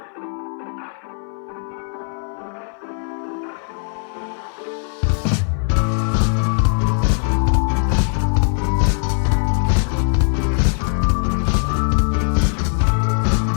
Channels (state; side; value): silent; right; 58 dB below the other